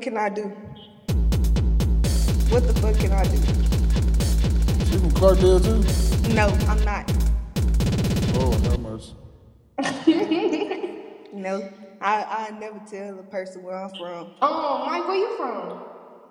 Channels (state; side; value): identical; both; correlation 1.00